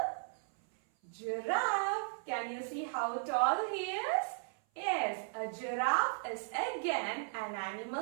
giraffe. Can you see how tall he is? Yes, a giraffe is again an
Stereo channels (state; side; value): silent; left; 54 dB below the other